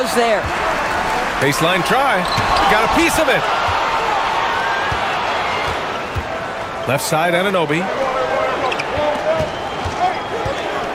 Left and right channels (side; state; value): both; identical; correlation 1.00